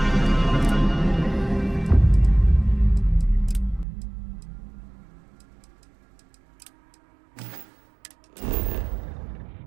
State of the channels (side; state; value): left; drops out; at 3.9 s